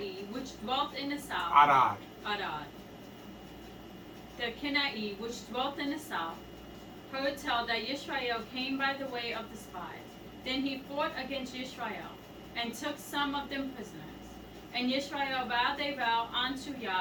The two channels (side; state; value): both; identical; correlation 1.00